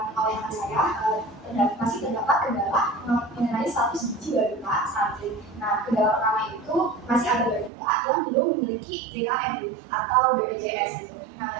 oleh saya, masih terdapat kendala mengenai status gizi balita stunting. Nah, kendala pertama itu masih ada balita yang belum memiliki BKM atau BPJS gitu. Nah,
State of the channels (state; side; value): drops out; left; at 7.7 s